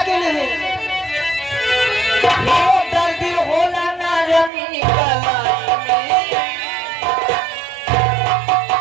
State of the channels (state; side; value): drops out; left; at 4.5 s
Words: है? दर्द होला ना रमी